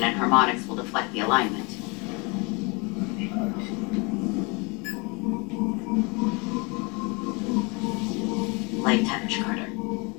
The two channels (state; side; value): quieter; right; 29.3 dB